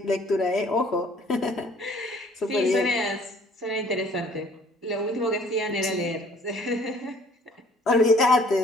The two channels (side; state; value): both; normal; correlation 0.56